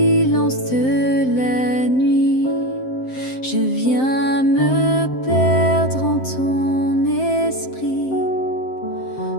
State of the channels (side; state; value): right; late; 7.7 ms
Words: de la nuit, je viens me perdre en ton esprit.